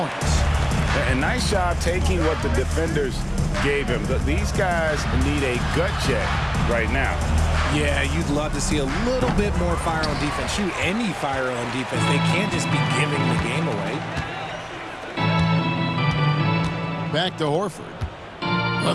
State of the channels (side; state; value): both; identical; correlation 1.00